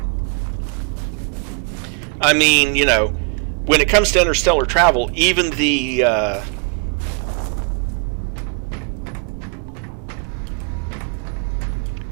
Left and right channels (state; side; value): quieter; left; 37.8 dB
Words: I mean, you know, when it comes to interstellar travel, even the